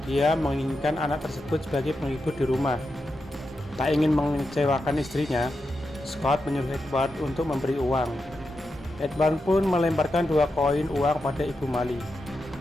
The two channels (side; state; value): both; normal; correlation 0.88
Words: dia menginginkan anak tersebut sebagai penghibur di rumah. Tak ingin mengecewakan istrinya, Scott menyuruh Edward untuk memberi uang. Edward pun melemparkan 2 koin uang pada Ibu Mali.